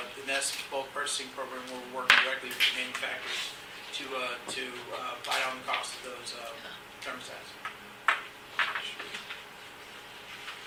NEST bulk purchasing program, where we're working directly with the manufacturers to buy down the cost of those thermostats.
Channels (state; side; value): identical; both; correlation 1.00